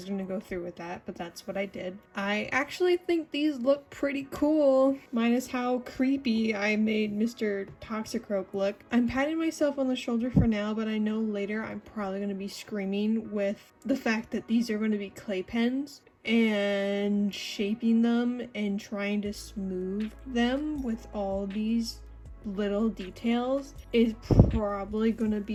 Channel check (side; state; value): both; identical; correlation 1.00